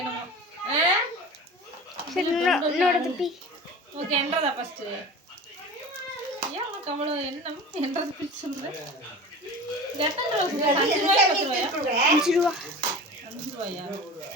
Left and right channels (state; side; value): normal; both; correlation 0.35